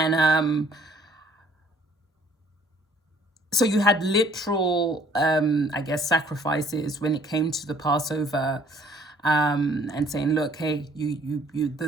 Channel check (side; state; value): both; normal; correlation 0.59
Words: so you had literal, I guess, sacrifices when it came to the Passover, and saying, look, hey,